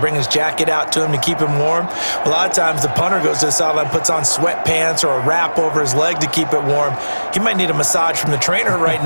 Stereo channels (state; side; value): inverted; both; correlation -1.00